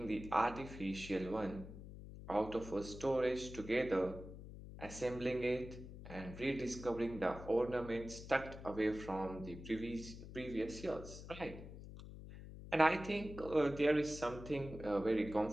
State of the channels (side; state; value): left; noise; hum, 12 dB below the sound